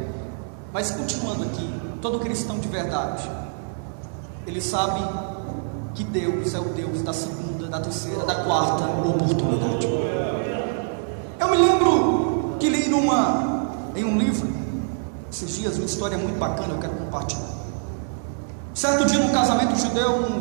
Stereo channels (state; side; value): silent; left; digital silence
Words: Mas continuando aqui, todo cristão de verdade, ele sabe que Deus é o Deus da segunda, da terceira, da quarta oportunidade. Eu me lembro que li em um livro esses dias uma história muito bacana, eu quero compartilhar. Certo dia, num casamento judeu,